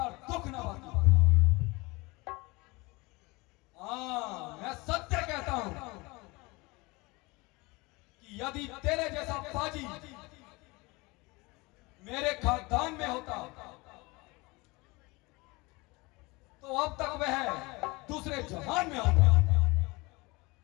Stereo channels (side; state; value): right; quieter; 24.5 dB